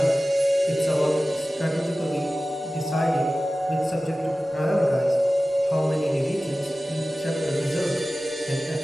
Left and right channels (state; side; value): normal; both; correlation 0.96